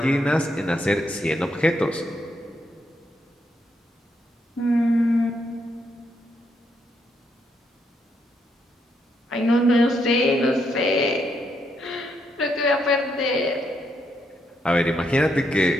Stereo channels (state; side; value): normal; both; correlation 0.77